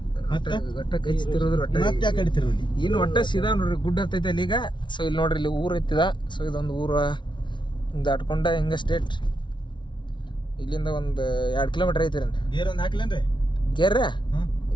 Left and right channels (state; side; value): late; right; 0.23 ms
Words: ಇನ್ನು ಒಟ್ಟ ಸೀದಾ ನೋಡ್ರಿ ಗುಡ್ಡ ಹತ್ತೈತೆ ಅಲ್ಲಿ ಈಗ. ಸೊ ಇಲ್ಲಿ ನೋಡ್ರಿ ಇಲ್ಲಿ ಊರ್ ಐತಿದ. ಸೊ ಇದೊಂದು ಊರ ದಾಟ್ಕೊಂಡ ಹಿಂಗ ಸ್ಟೇಟ್ ಇಲ್ಲಿಂದ ಒಂದು 2 ಕಿಲೋಮೀಟರ್ ಐತಿ ರೀ. ಗೇರ್ ಒಂದು ಹಾಕ್ಲೇನ್ರಿ? ಗೇರ್